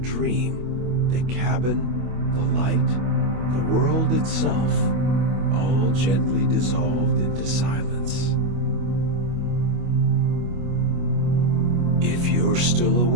the cabin, the light, the world itself, all gently dissolved into silence. If you're still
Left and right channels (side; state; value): left; late; 25 ms